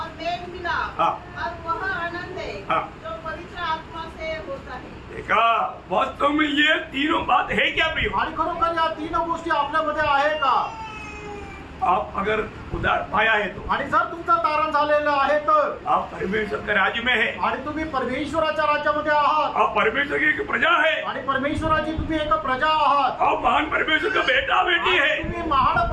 मेल मिलाप हाँ। और वह आनंद है हाँ। जो पवित्र आत्मा से होता है। देखा, वास्तव में ये तीनों बात है क्या प्रियो? आणि खरोखर या तीन गोष्टी आपल्यामध्ये आहे का? आप अगर उधार पाया है तो आणि जर तुमचं तारण झालेलं आहे तर आप परमेश्वर के राज्य में है। आणि तुम्ही परमेश्वराच्या राज्यामध्ये आहात आप परमेश्वर की एक प्रजा है। आणि परमेश्वराची तुम्ही एक प्रजा आहात। आप महान परमेश्वर का बेटा बेटी है। आणि तुम्ही महान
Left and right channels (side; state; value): both; identical; correlation 1.00